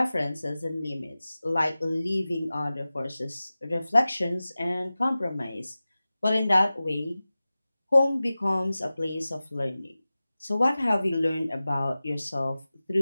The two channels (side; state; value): both; inverted; correlation -0.96